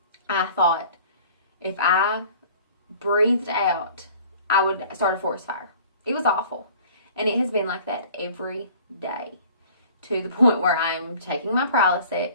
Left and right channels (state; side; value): inverted; both; correlation -0.48